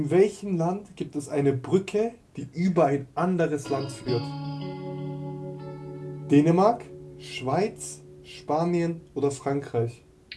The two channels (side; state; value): both; identical; correlation 1.00